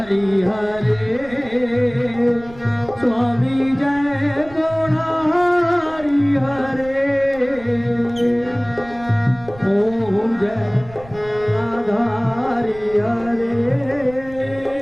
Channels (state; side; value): noise; right; rumble, 19 dB below the sound